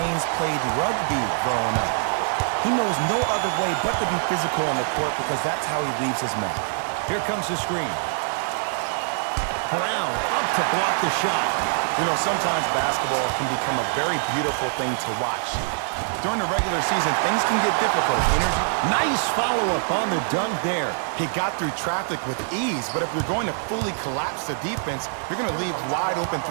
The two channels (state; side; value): silent; left; 62 dB below the other